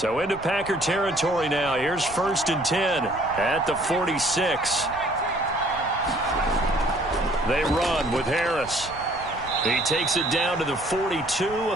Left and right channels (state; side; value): noise; right; rumble, 17 dB below the sound